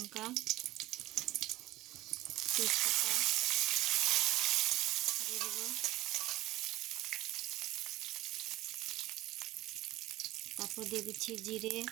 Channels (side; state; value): left; quieter; 16.9 dB